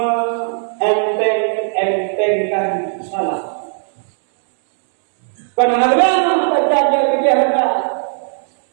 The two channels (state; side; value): silent; left; digital silence